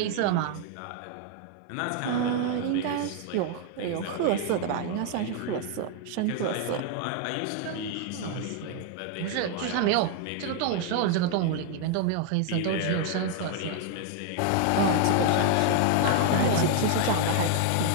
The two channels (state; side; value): different; both; correlation 0.00